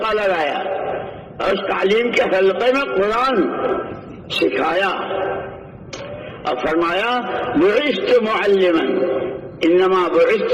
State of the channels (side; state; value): both; identical; correlation 1.00